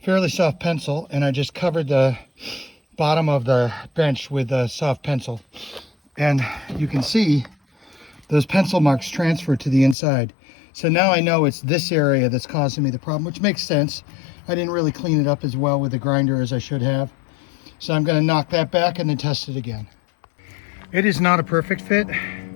fairly soft pencil and I just covered the bottom of the bench with a soft pencil. And you can see those pencil marks transfer to the inside. So now I know it's this area that's causing me the problem, which makes sense. I didn't really clean it up as well with the grinder as I should have. So I'm going to knock that back and then test it again. It is not a perfect fit,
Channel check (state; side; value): drops out; right; at 10.0 s